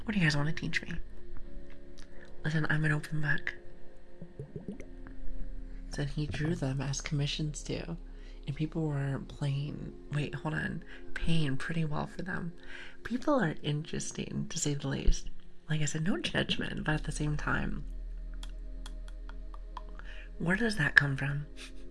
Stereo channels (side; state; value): both; identical; correlation 1.00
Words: What do you guys want to teach me? Listen, I'm an open book. Said he drew them as commissions too. And people were paying pretty well for them. People are interesting, to say the least. Like I said, no judgment, but at the same time, where does that come from?